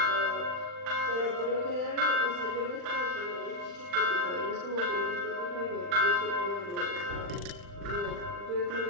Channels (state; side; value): late; left; 40 ms